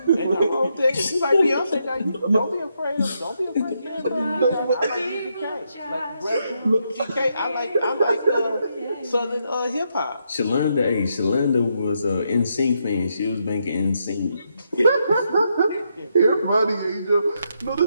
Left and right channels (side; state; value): both; inverted; correlation -0.80